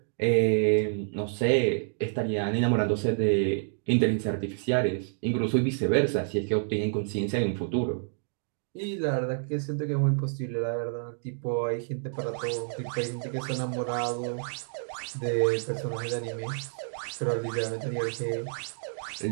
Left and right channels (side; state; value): left; silent; digital silence